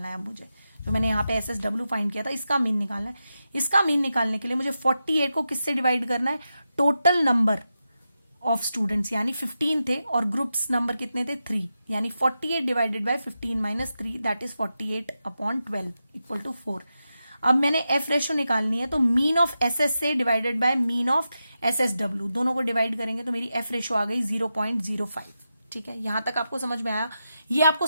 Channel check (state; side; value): inverted; both; correlation -0.89